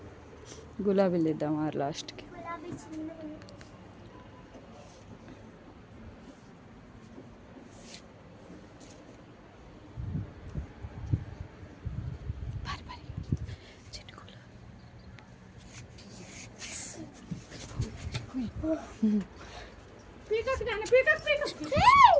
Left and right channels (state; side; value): identical; both; correlation 1.00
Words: గులాబీలు ఇద్దాం ఆ లాస్ట్కి. పీకక్ నాన్న, పీకక్ పీకక్